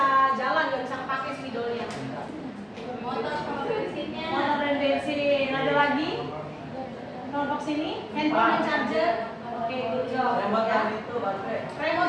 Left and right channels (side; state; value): both; identical; correlation 1.00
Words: jalan, nggak bisa pakai spidolnya. Motor sama bensinnya. Motor dan bensin. Ada lagi? Kelompok sini, handphone dan charger. Oke, good job. Remote Ya. dan itu baterai.